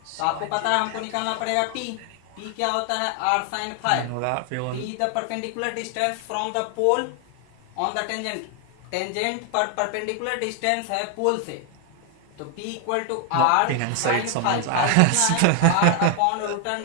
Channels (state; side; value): different; both; correlation 0.00